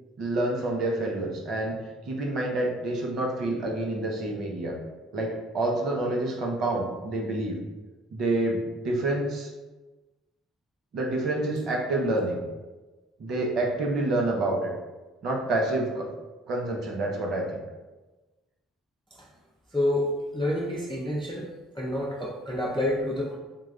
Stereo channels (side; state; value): both; normal; correlation 0.53